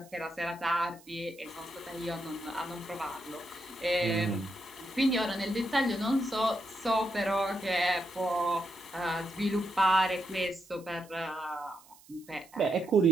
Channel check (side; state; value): right; noise; hiss, 25 dB below the sound